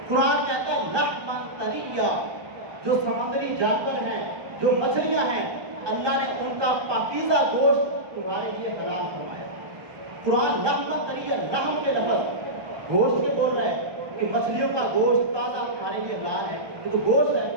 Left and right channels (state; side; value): late; left; 1.2 ms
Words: قرآن کہتا ہے لحما طریا، جو سمندری جانور ہیں، جو مچھلیاں ہیں، اللہ نے ان کا پاکیزہ گوشت تمہارے لیے حلال فرمایا۔ قرآن لحما طریا، لحم کے لفظ گوشت کے بول رہا ہے کہ مچھلیوں کا گوشت تازہ تمہارے لیے حلال ہے، یہ تو گوشت ہے۔